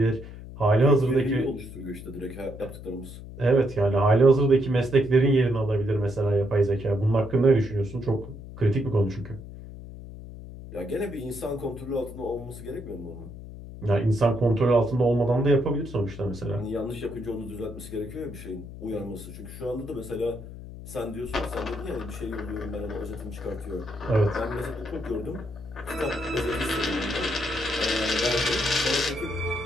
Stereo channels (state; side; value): noise; left; hum, 13 dB below the sound